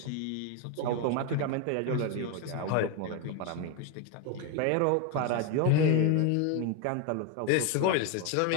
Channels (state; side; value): different; both; correlation 0.02